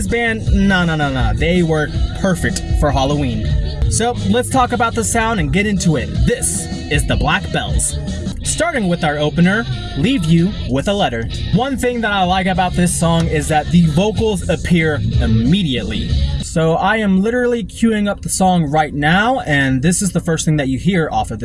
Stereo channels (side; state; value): both; identical; correlation 1.00